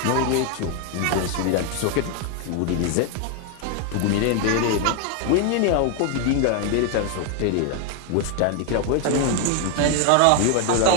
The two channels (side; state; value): both; different; correlation 0.01